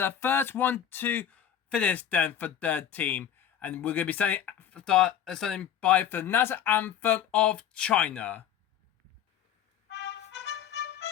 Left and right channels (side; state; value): right; quieter; 9.4 dB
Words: first 1-2 finish then for their team. And we're going to be standing by for the national anthem of China.